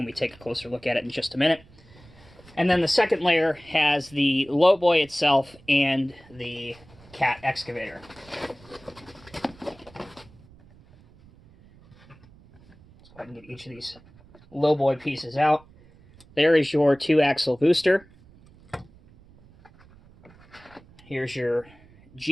we take a closer look at it in just a minute. And then the second layer has the LowBoy itself and the Cat excavator. Let's go ahead and get each of these LowBoy pieces out. There is your 2-axle booster. Here's your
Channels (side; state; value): right; noise; rumble, 25 dB below the sound